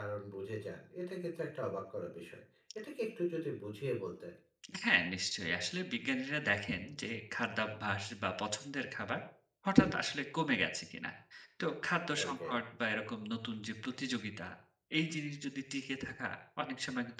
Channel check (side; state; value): both; identical; correlation 1.00